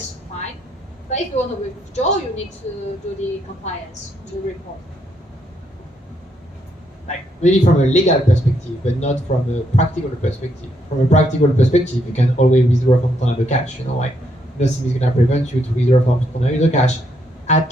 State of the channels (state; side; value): normal; both; correlation 0.75